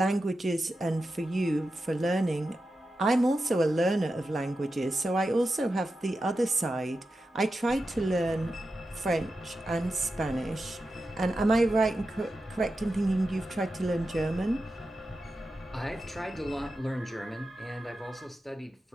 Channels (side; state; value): both; normal; correlation 0.91